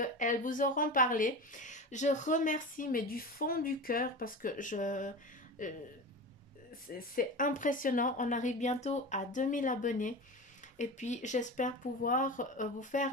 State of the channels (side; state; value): both; normal; correlation 0.28